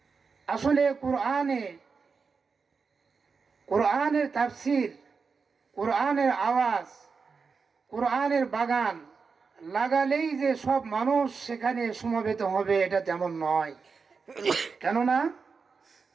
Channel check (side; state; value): left; quieter; 5.1 dB